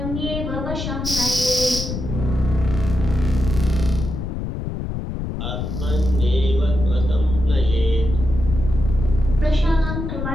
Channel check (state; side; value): noise; left; rumble, 5 dB below the sound